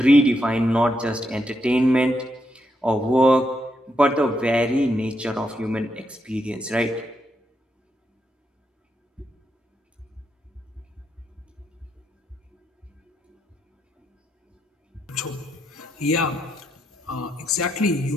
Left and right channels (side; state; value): both; normal; correlation 0.80